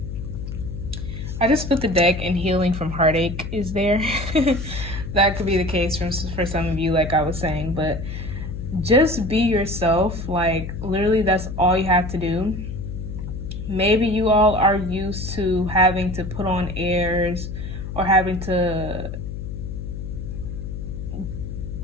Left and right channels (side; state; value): left; noise; hum, 7 dB below the sound